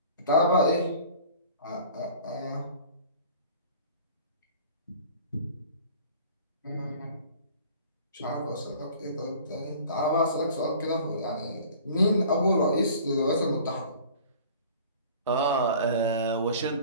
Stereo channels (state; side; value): inverted; both; correlation -0.47